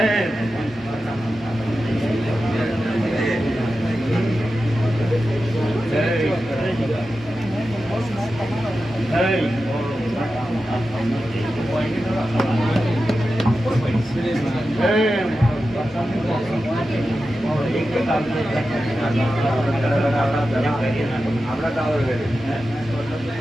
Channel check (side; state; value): both; normal; correlation 0.92